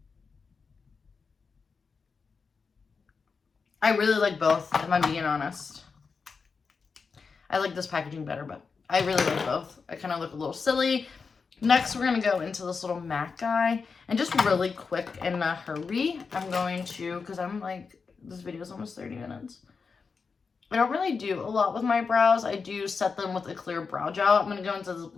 I really like both, if I'm being honest. I like this packaging better, but I really like both. I kind of look a little silly. Next, we're going to go into this little MAC guy. And just really quick in a hurry, I'm going to, because I'm like, this video is almost 30 minutes. I don't really do a lot with my brows. I do set them with a clear brow gel. I'm going to go into this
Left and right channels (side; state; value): right; quieter; 5.1 dB